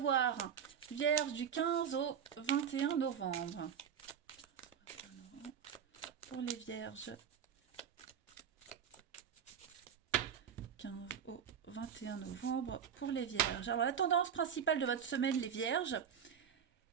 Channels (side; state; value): left; quieter; 8.0 dB